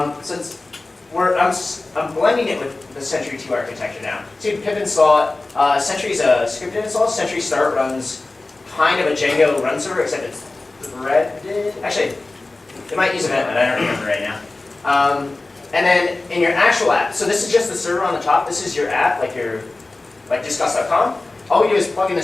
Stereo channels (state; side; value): quieter; right; 3.2 dB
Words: I'm blending it with the Sentry 2 architecture now. So you pip install it. Sentry is a scripted install. Sentry Start runs kind of a Django run server, except it's threaded. Actually, it might use event, but I don't remember right now. And then in your actual app, so this is just the server on the top. This is your app, like discuss.com. All we do is plug in the